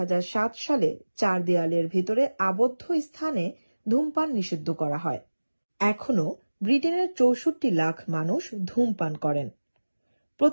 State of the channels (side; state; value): both; inverted; correlation -1.00